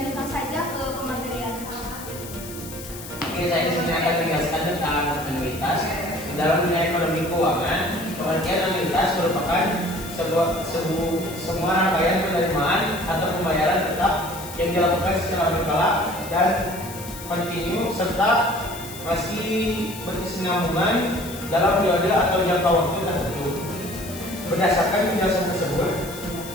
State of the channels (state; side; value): noise; left; hiss, 13 dB below the sound